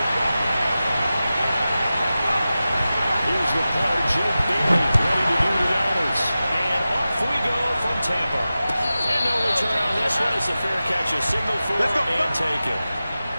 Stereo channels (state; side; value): inverted; both; correlation -0.94